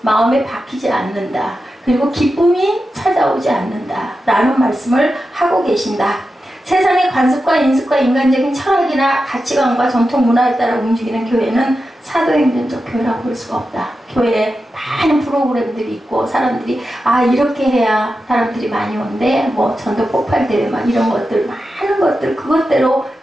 마음에 박히지 않는다. 그리고 기쁨이 찾아오지 않는다. 라는 말씀을 하고 계신다. 세상의 관습과 인습과 인간적인 철학이나 가치관과 전통 문화에 따라 움직이는 교회는 사도행전적 교회라고 볼 수가 없다. 교회에 많은 프로그램들이 있고 사람들이 이렇게 해야 사람들이 많이 오는데 뭐 전도 폭발 대회 막 이런 것들, 많은 것들, 그것대로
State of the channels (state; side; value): normal; both; correlation 0.90